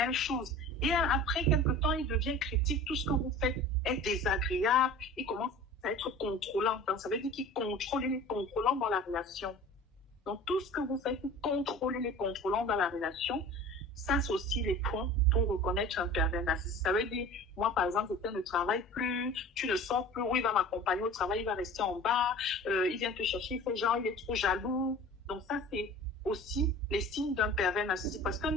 choses, et après quelque temps, il devient critique, tout ce que vous faites est désagréable, il commence à être contrôlant. Donc, ça veut dire qu'il contrôle les contrôlants dans la relation. Donc, tout ce que vous faites, vous contrôlez les contrôlants dans la relation. Ça, c'est aussi les points pour reconnaître un pervers narcissique. Ça veut dire, moi, par exemple, quelqu'un ne travaille plus, tu ne sors plus, où il va m'accompagner au travail, il va rester en bas, il vient te chercher, il fait genre, il est trop jaloux. Donc, ça, c'est aussi les signes d'un pervers narcissique. Parce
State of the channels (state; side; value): normal; both; correlation 0.40